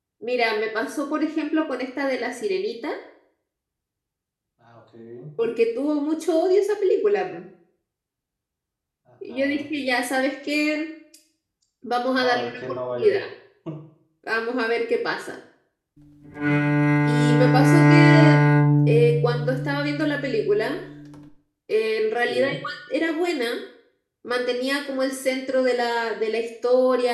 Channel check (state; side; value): identical; both; correlation 1.00